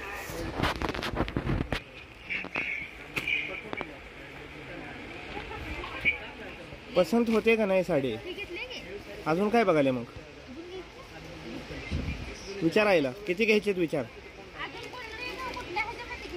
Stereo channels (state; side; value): identical; both; correlation 1.00